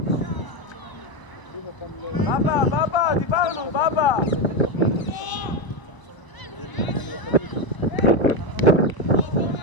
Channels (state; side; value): late; right; 1.0 ms